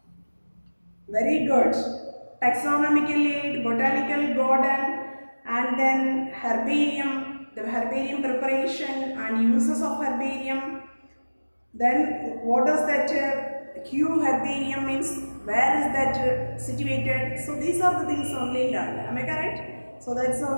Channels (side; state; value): both; inverted; correlation -1.00